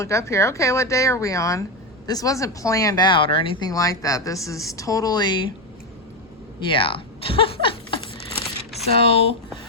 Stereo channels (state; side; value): normal; both; correlation 0.09